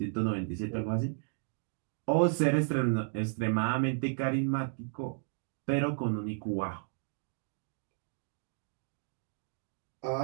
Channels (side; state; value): left; silent; digital silence